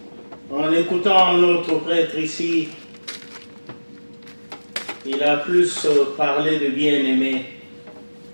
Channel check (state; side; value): inverted; both; correlation -1.00